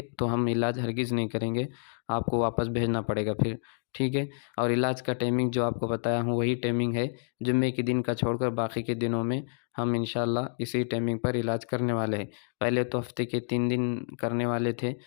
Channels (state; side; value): silent; right; digital silence